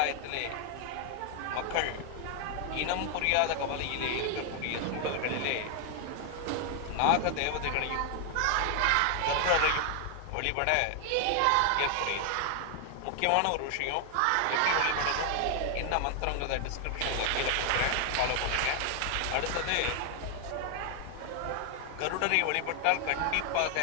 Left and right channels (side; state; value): both; different; correlation 0.00